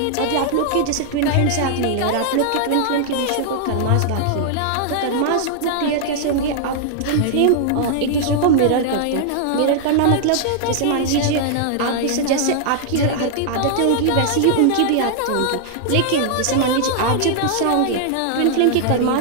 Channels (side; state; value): both; different; correlation -0.01